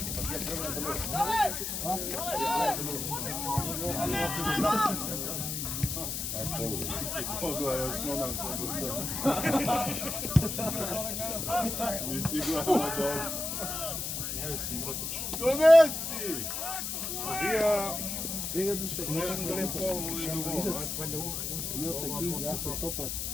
Pogledaj, osnovna mi si glava dobro. Ne mislim, brotoč. Donesi! Vega duše. Ne lepo ovo i drugo. Milca King, Gaca Topat.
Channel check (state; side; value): noise; left; hiss, 3 dB below the sound